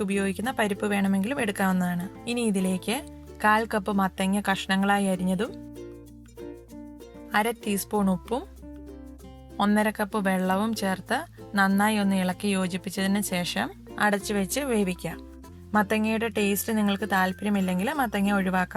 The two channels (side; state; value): both; identical; correlation 1.00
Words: ഉപയോഗിക്കുന്ന പരിപ്പ് വേണമെങ്കിലും എടുക്കാവുന്നതാണ്. ഇനി ഇതിലേക്ക് 1/4 കപ്പ് മത്തങ്ങ കഷ്ണങ്ങളായി അരിഞ്ഞതും 1/2 ടീസ്പൂൺ ഉപ്പും 1/2 കപ്പ് വെള്ളവും ചേർത്ത് നന്നായി ഒന്ന് ഇളക്കി യോജിപ്പിച്ചതിന് ശേഷം അടച്ചു വെച്ച് വേവിക്കാം. മത്തങ്ങയുടെ ടേസ്റ്റ് നിങ്ങൾക്ക് താല്പര്യമില്ലെങ്കിൽ മത്തങ്ങ